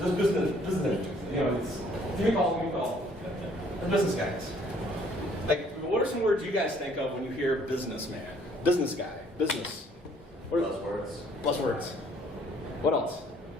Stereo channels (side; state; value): both; normal; correlation 0.61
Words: know, give me a call. Give me a call." The business guys. Like, what are some words you guys think of when you hear businessman, business guy, business? What are those words? Buzzwords. What else?